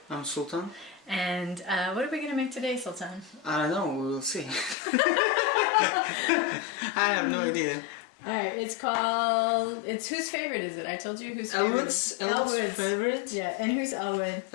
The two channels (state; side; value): drops out; right; at 4.8 s